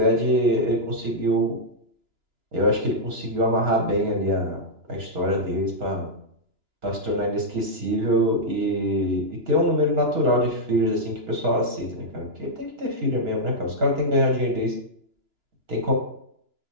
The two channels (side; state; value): left; late; 2.9 ms